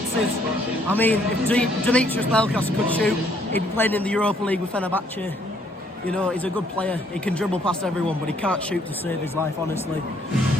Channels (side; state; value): both; normal; correlation 0.66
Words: I mean, if Demetrius Pelkas could shoot, he'd be playing in the Europa League with Fenerbahce. You know, he's a good player, he can dribble past everyone, but he can't shoot to save his life, honestly.